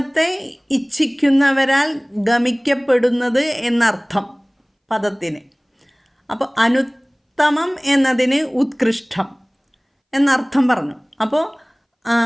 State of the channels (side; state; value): both; identical; correlation 1.00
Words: ഇച്ഛിക്കുന്നവരാൽ ഗമിക്കപ്പെടുന്നത് എന്നർത്ഥം പദത്തിന്. അപ്പോൾ അനുത്തമം എന്നതിന് ഉത്കൃഷ്ടം എന്നർത്ഥം പറഞ്ഞു. അപ്പോൾ